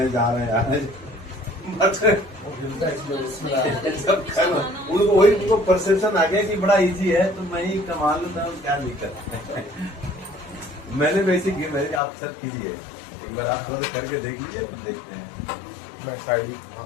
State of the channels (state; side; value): drops out; right; at 12.0 s